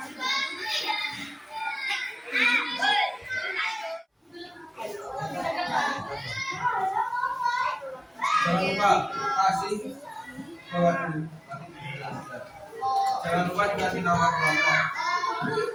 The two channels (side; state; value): both; identical; correlation 1.00